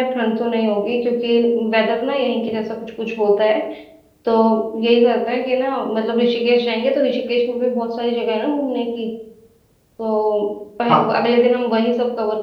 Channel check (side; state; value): both; identical; correlation 1.00